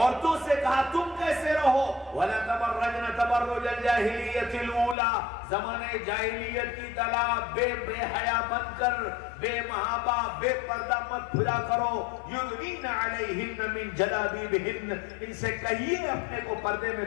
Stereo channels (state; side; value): drops out; right; at 5.0 s